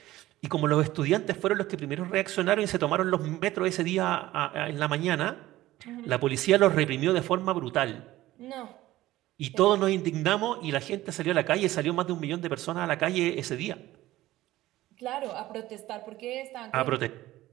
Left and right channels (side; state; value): left; quieter; 16.1 dB